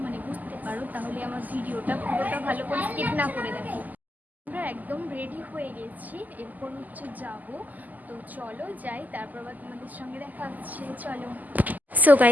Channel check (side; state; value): left; late; 0.082 ms